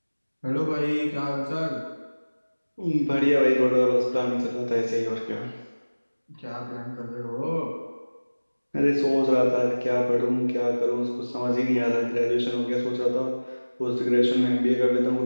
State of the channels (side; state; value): both; inverted; correlation -1.00